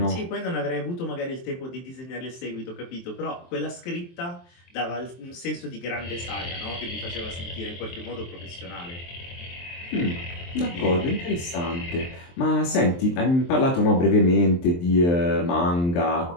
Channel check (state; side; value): late; right; 23 ms